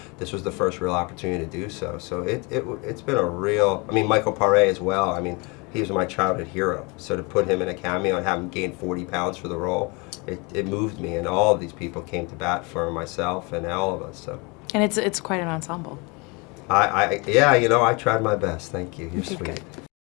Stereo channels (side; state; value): right; quieter; 28.7 dB